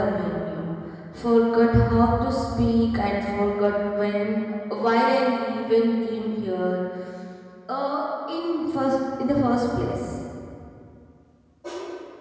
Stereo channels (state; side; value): identical; both; correlation 1.00